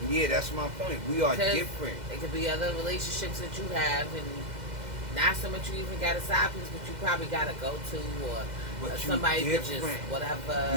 Yeah, that's my point. We are different. It could be other relationships that you have, and not so much you even got a side piece, but you probably got to go to, or somebody that just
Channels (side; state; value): left; late; 2.0 ms